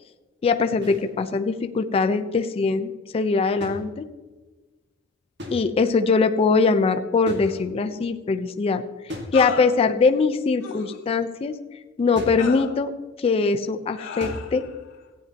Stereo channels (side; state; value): right; quieter; 4.0 dB